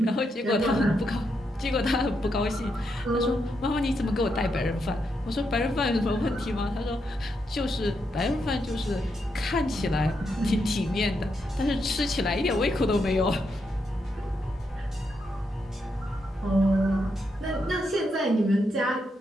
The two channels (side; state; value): both; normal; correlation 0.81